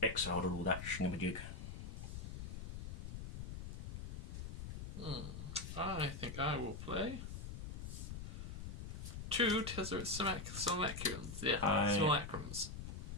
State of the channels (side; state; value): left; noise; rumble, 6 dB below the sound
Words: exiled or all that shinabajig. I think I will play 2 Tezzeret Simulacrums. Yeah, Simulacrums.